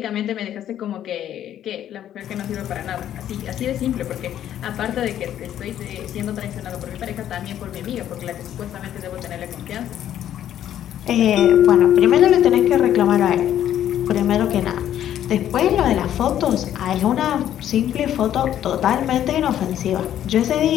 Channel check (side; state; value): right; quieter; 11.1 dB